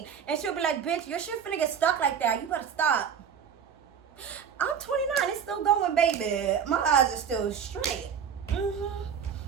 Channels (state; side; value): quieter; left; 7.5 dB